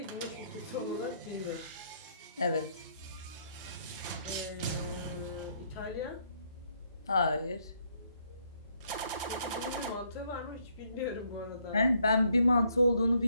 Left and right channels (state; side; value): inverted; both; correlation -0.70